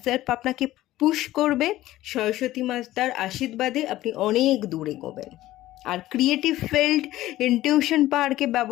সেলফ আপনাকে পুশ করবে। সরস্বতী মাতার আশীর্বাদে আপনি অনেক দূর এগোবেন। আর ক্রিয়েটিভ ফিল্ড, ইনটিউশন পাওয়ারকে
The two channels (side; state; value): right; quieter; 15.5 dB